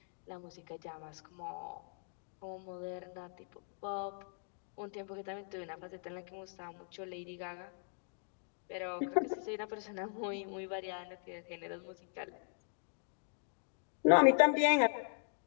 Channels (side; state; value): right; silent; digital silence